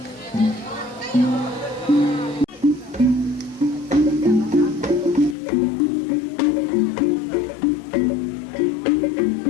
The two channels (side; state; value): right; drops out; at 5.4 s